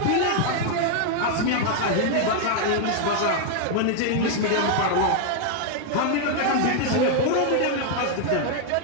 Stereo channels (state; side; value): different; both; correlation 0.00